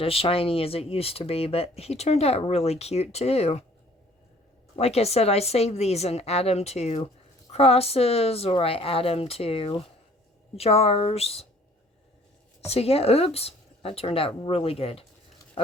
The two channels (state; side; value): normal; both; correlation 0.55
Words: as shiny as it used to be, but he turned out really cute too. Like I said, I save these and add them to crosses, or I add them to jars. So yeah, oops, that turned out really good.